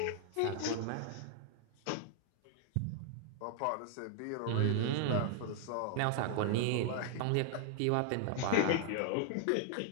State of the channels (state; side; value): different; both; correlation 0.00